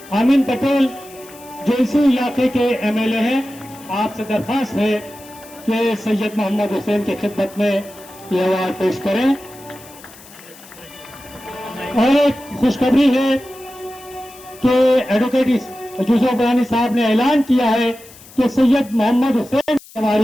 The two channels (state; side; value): noise; left; hiss, 21 dB below the sound